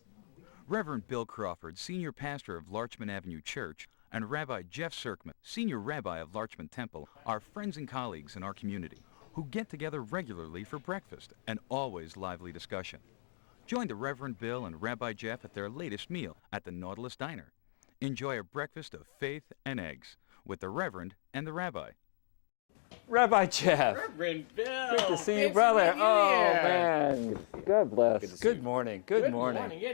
Reverend Bill Crawford, Senior Pastor of Larchmont Avenue Church, and Rabbi Jeff Sirkman, Senior Rabbi of Larchmont Temple, are friends and colleagues in our community who get together regularly for breakfast and always lively discussion. Join the Reverend Bill and Rabbi Jeff at their latest meal at the Nautilus Diner. Enjoy a breakfast of faith and eggs with the Reverend and the Rabbi. Rabbi Jeff. Reverend Bill. Good to see you, brother. Oh, man. God bless. Good morning. Good morning. Yeah,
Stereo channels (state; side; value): silent; right; digital silence